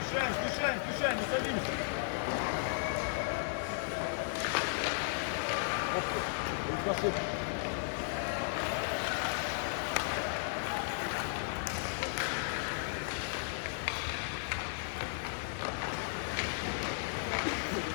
Мешаем, не садимся. Оп, красота.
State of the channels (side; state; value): right; silent; digital silence